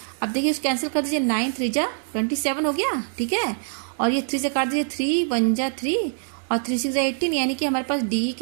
अब देखिए इसको कैंसिल कर दीजिए, 9 3 जा 27 हो गया, ठीक है, और ये 3 से काट दीजिए, 3 1 जा 3 और 3 6 जा 18, यानी कि हमारे पास DE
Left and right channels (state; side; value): silent; left; digital silence